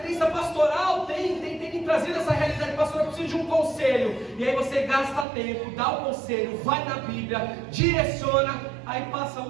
pastoral tem me trazido essa realidade. Pastor, eu preciso de um conselho. E aí você gasta tempo, dá o conselho, vai na Bíblia, direciona. Aí passa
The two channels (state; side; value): drops out; left; at 5.2 s